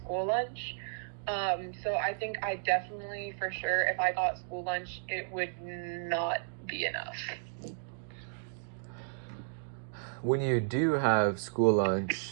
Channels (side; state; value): left; silent; digital silence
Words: lunch. So I think I definitely, for sure, if I got school lunch, it would not be enough. When you do have school